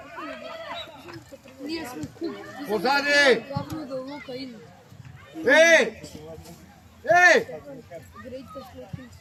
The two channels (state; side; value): identical; both; correlation 1.00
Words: Ние сме куп. Позади! Главно да лука иде. Еј!